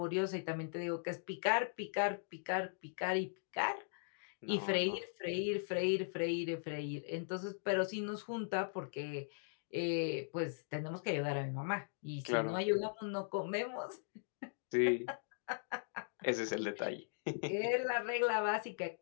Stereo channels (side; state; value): right; silent; digital silence